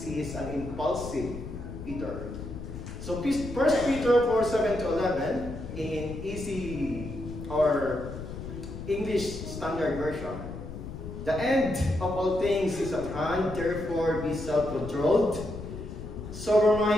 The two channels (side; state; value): left; noise; rumble, 9 dB below the sound